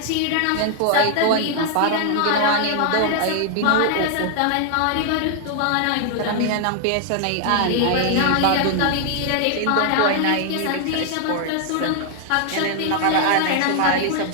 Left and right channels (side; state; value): both; different; correlation 0.00